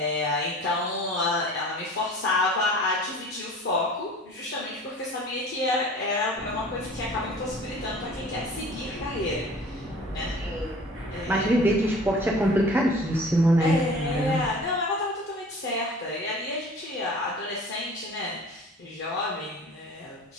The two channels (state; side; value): normal; both; correlation 0.44